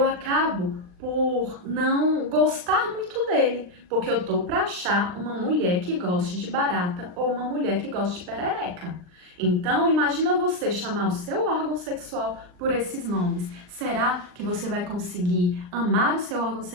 acabo por não gostar muito dele, porque eu tô para achar uma mulher que goste de barata ou uma mulher que goste de perereca. Então, imagina você chamar o seu órgão sexual por esses nomes. Será que você vai conseguir amar o seu órgão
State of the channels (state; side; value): late; left; 39 ms